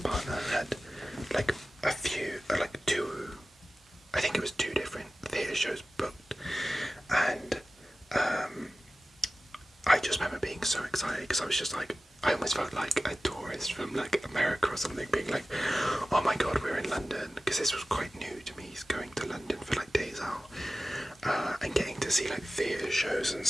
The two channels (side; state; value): both; normal; correlation 0.96